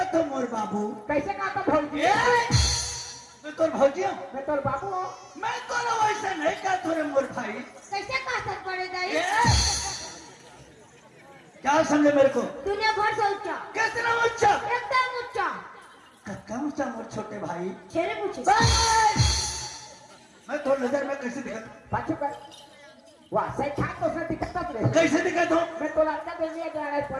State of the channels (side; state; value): both; identical; correlation 1.00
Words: मोर बाबू कैसे कहता भौजी मैं तोर भौजी हूँ मैं तोर बाबू हूँ मैं तोला वैसा नहीं कहता रे मोर भाई कैसे कहा सर पड़ेगा ए, क्या समझे मेरे को? दुनिया भर से ऊंचा, कितना ऊंचा? एकदम ऊंचा। कम ऊंचा मोर छोटे भाई। छेरे पूछे मैं तो नजर में कैसे दिखता? पाछू कर वाह सही खा तो से दिखता रे कैसे दिखता हूँ? मैं तो लड़का दे दिया जा रहा है